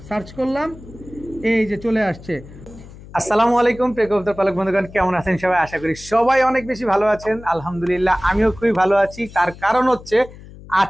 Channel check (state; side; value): noise; left; hum, 18 dB below the sound